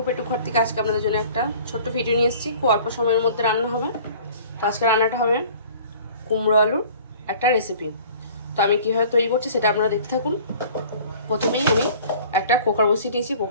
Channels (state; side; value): inverted; both; correlation -0.48